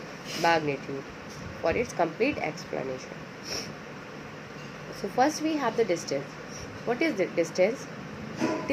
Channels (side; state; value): both; identical; correlation 1.00